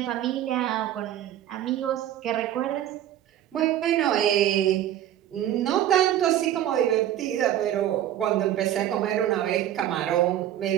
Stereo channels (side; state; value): left; quieter; 11.8 dB